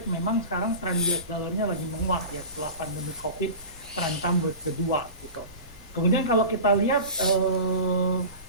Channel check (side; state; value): both; inverted; correlation -0.33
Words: memang sekarang tren US dollarnya lagi menguat ya setelah pandemi COVID terancam kedua gitu. Kemudian kalau kita lihat